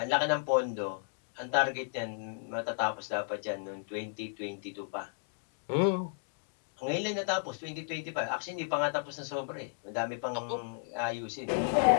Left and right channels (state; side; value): silent; right; digital silence